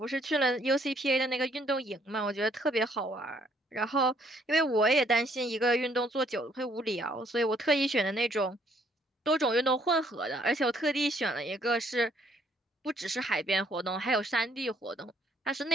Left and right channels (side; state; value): both; normal; correlation 0.66